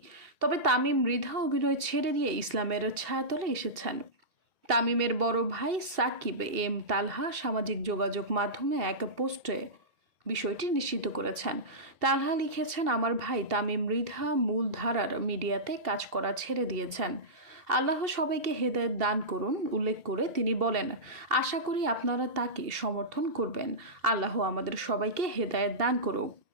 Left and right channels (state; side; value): late; left; 2.7 ms